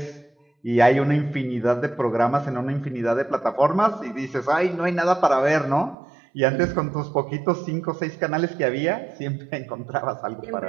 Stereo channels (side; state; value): left; drops out; at 6.0 s